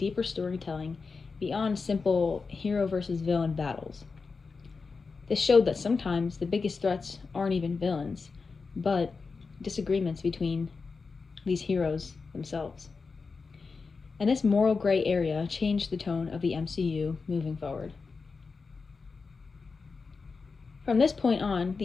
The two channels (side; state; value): right; quieter; 4.6 dB